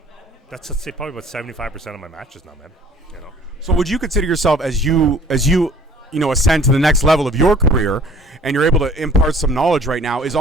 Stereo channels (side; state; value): both; normal; correlation 0.52